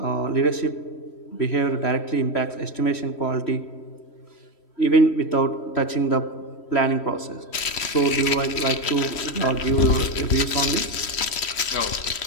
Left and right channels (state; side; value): late; right; 3.1 ms